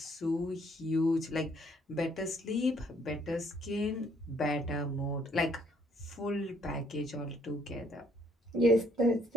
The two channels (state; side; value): normal; both; correlation 0.66